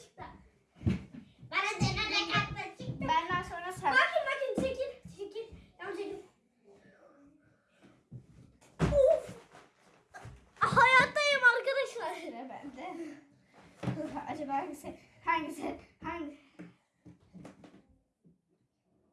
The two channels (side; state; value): both; identical; correlation 1.00